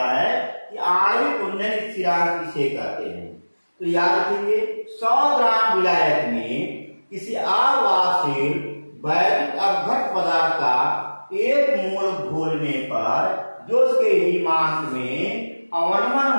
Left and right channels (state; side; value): inverted; both; correlation -1.00